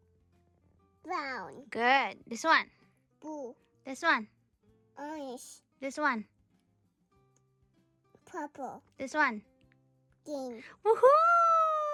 Brown. Good. This one. Blue. This one. Orange. This one. Purple. This one. Green. Woohoo!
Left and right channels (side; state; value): both; identical; correlation 1.00